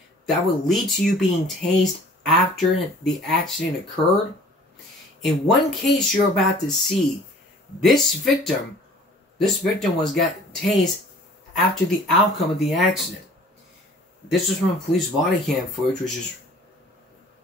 that would lead to you being tased after the accident occurred? In one case you're about to see, this victim got tased after the outcome of the accident. This was from police body cam footage,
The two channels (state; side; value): normal; both; correlation 0.50